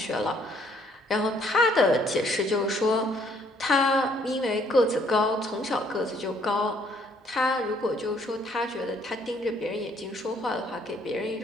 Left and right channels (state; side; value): normal; both; correlation 0.65